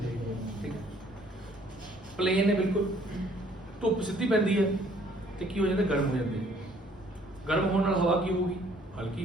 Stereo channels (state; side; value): normal; both; correlation 0.60